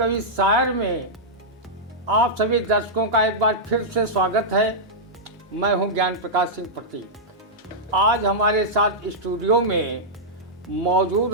शायर में आप सभी दर्शकों का एक बार फिर से स्वागत है। मैं हूं ज्ञान प्रकाश सिंह प्रतीक। आज हमारे साथ स्टूडियो में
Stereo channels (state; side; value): normal; both; correlation -0.10